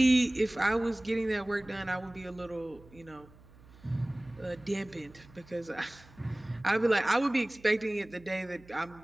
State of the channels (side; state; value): right; noise; hum, 23 dB below the sound